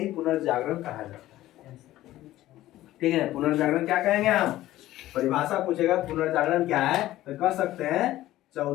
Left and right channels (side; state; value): right; quieter; 15.1 dB